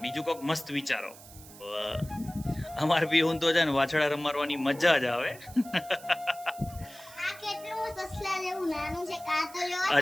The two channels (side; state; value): right; noise; hiss, 19 dB below the sound